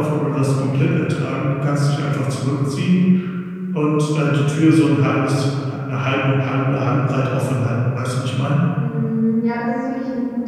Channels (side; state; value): both; identical; correlation 1.00